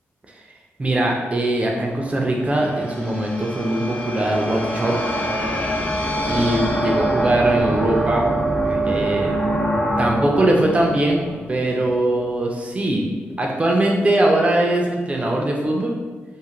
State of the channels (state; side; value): normal; both; correlation 0.85